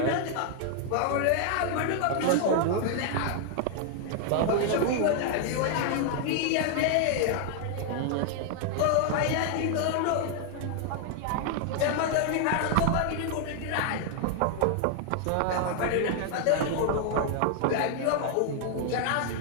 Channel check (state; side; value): different; both; correlation 0.00